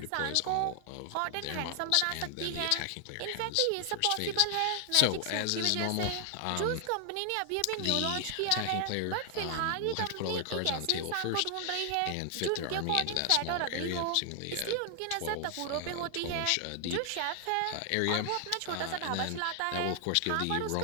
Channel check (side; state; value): both; different; correlation 0.00